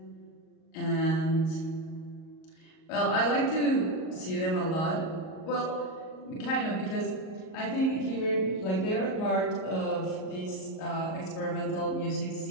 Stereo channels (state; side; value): late; right; 38 ms